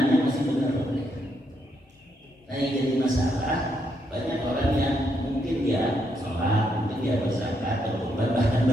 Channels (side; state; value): both; normal; correlation 0.77